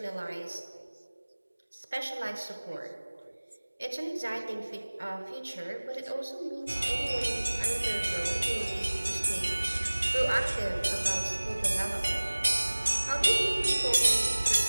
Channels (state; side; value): inverted; both; correlation -1.00